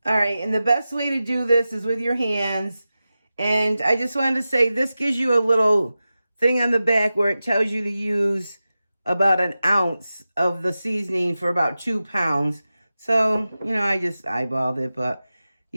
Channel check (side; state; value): both; inverted; correlation -0.94